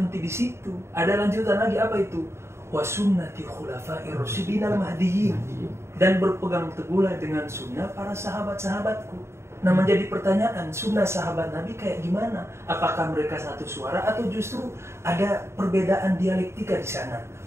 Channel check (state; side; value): late; left; 0.13 ms